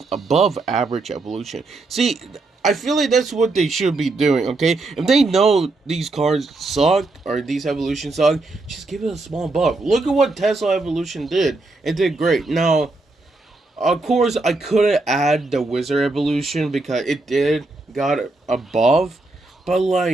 above average evolution. See, I feel like that's what they should be doing, okay? If they know these cars suck or these evolutions suck, just give it a small buff. Look at what Tesla evolution did. It did great. Now, of course, I couldn't add the wizard evolution because it did got above, but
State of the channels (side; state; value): left; quieter; 3.2 dB